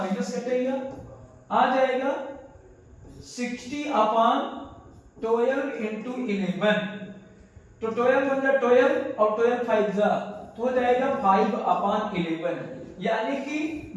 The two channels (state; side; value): identical; both; correlation 1.00